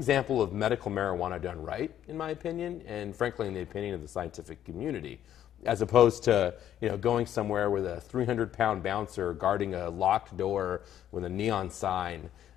of medical marijuana done right, in my opinion, and frankly in the opinion of the scientific community, as opposed to going somewhere with a 300-pound bouncer guarding a locked door with a neon sign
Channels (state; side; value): quieter; right; 10.9 dB